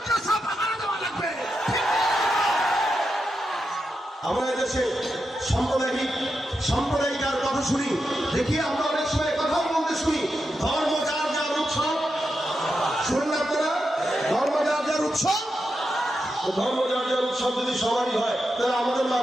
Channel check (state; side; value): normal; both; correlation 0.87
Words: পাহারা দেওয়া লাগবে। আমরা এদেশে সাম্প্রদায়িকার কথা শুনি, দেখি আমরা অনেক সময় কথাও বলতে শুনি, ধর্ম যার যার উৎসব। শুনুন আপনারা, ধর্ম যার যার উৎসব, ধর্ম যার যার উৎসব যদি সবারই হয়, তাহলে আমাদের